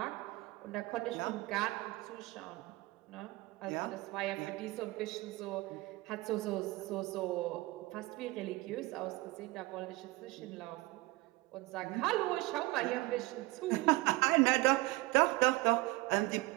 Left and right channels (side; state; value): left; quieter; 21.2 dB